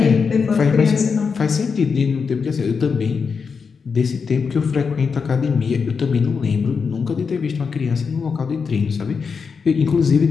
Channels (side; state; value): right; quieter; 5.6 dB